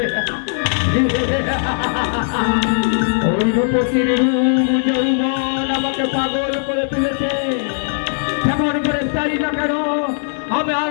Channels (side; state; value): right; silent; digital silence